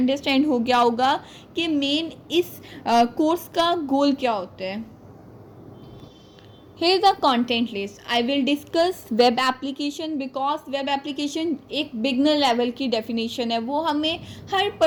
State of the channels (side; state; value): both; identical; correlation 1.00